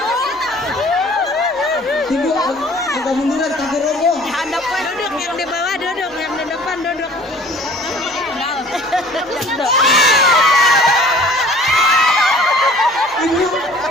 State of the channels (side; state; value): both; normal; correlation 0.49